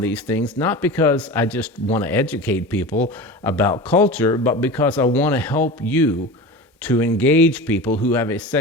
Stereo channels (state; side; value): normal; both; correlation 0.30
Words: things, not because I just want to educate people about culture, but because I want to help you to engage people who have a